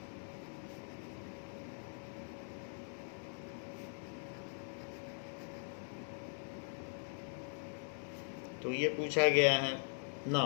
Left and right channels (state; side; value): silent; right; 50 dB below the other